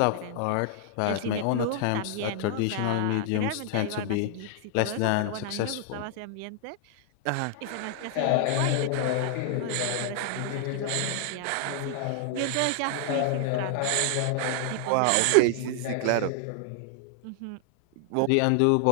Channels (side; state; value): both; different; correlation 0.00